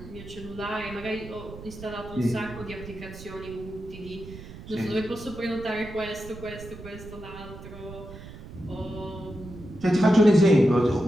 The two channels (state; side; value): noise; right; rumble, 14 dB below the sound